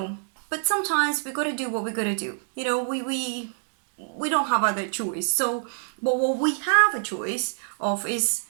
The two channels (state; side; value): silent; left; digital silence